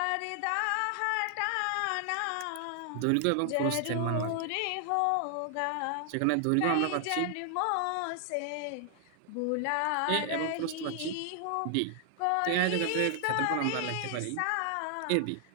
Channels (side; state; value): both; different; correlation 0.00